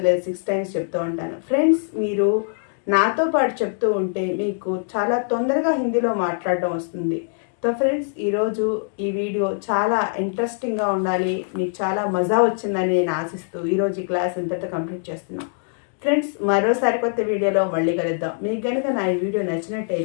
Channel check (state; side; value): silent; right; digital silence